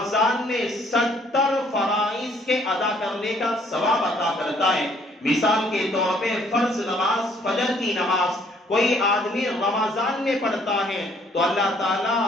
میں 70 فرائض کے ادا کرنے کا ثواب عطا کرتا ہے۔ مثال کے طور پہ فرض نماز، فجر کی نماز کوئی آدمی رمضان میں پڑھتا ہے تو اللہ تعالیٰ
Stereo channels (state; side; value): normal; both; correlation 0.63